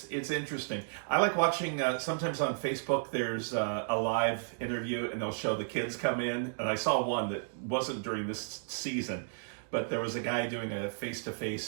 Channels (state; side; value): silent; left; digital silence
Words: interesting. I like watching, sometimes on Facebook there's a live interview and they'll show the kids come in. And I saw one that wasn't during this season, but there was a guy doing a